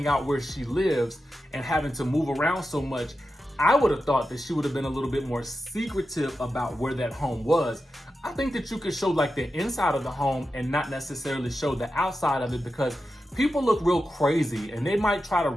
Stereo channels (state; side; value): normal; both; correlation 0.91